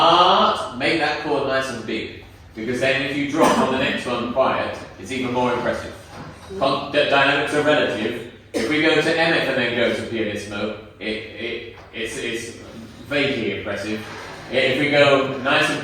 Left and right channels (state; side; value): identical; both; correlation 1.00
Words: Make that chord nice and big, because then if you drop on the next one quiet, it's even more impressive. Dynamics are relative. If we go to MF and then go to pianissimo, it's vaguely impressive. If we go nice and